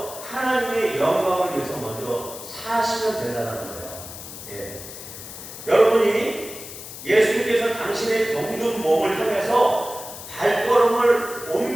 하나님의 영광을 위해서 먼저 사시면 된다는 거예요. 예. 여러분이 예수님께서 당신의 병든 몸을 향해서 발걸음을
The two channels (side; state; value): left; noise; hiss, 12 dB below the sound